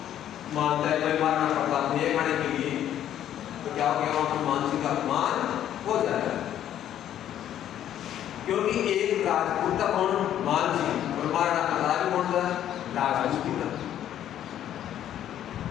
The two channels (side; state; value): right; quieter; 11.0 dB